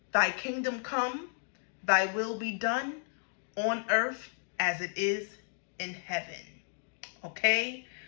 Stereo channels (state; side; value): silent; right; 56 dB below the other